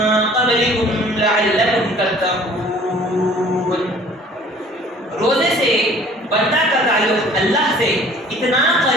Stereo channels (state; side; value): normal; both; correlation 0.51